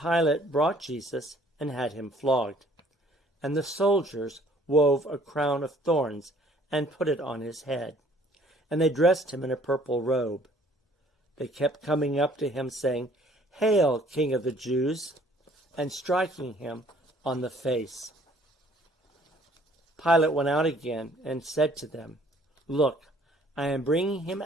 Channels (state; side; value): normal; both; correlation 0.58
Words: brought Jesus and had him flogged. And the soldiers wove a crown of thorns and put it on his head. And they dressed him in a purple robe. They kept coming up to him, saying, "Hail, King of the Jews!" and striking him on the face. Pilate went out again and said to them, "Look, I am bringing him